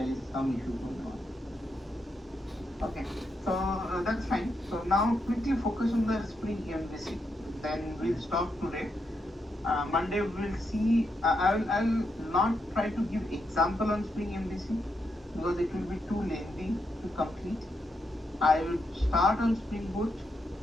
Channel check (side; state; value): both; normal; correlation 0.82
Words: is some issue going on. Okay, so that's fine. So now quickly focus on the SpringMVC. Then we'll stop today. Monday we will see. I'll not try to give example on SpringMVC because it will be too lengthy to complete. I will start on Spring Boot,